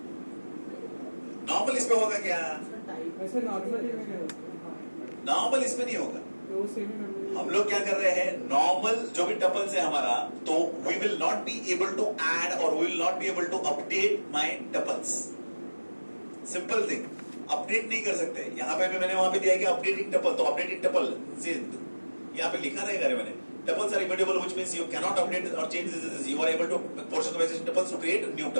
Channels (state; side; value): inverted; both; correlation -1.00